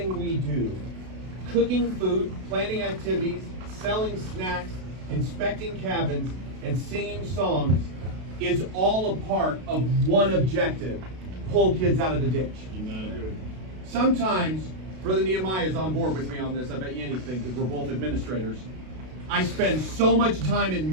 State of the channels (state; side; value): late; left; 32 ms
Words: we do, cooking food, planning activities, selling snacks, inspecting cabins, and singing songs, is all a part of one objective: pull kids out of the ditch. Good. Sometimes, Brother Nehemiah is on board with me on this, I bet you anything, because we're both administrators. I spend so much time